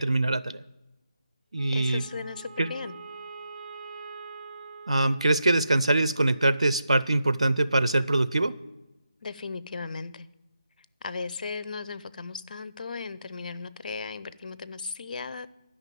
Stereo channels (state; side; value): inverted; both; correlation -0.84